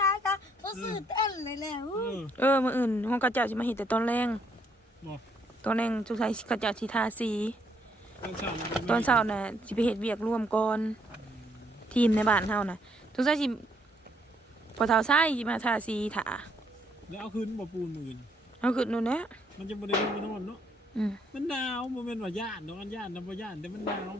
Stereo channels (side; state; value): both; normal; correlation 0.70